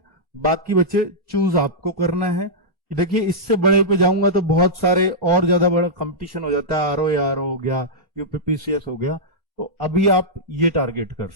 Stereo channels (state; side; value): normal; both; correlation -0.10